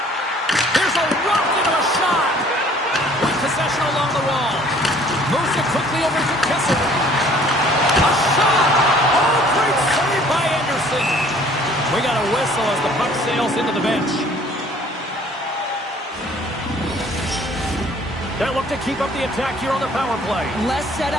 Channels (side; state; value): both; normal; correlation 0.55